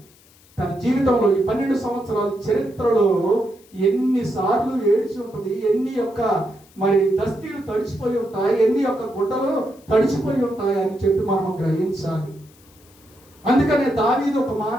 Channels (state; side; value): noise; left; hiss, 28 dB below the sound